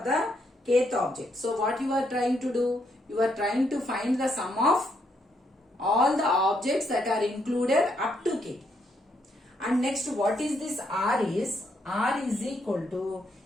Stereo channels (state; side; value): normal; both; correlation 0.75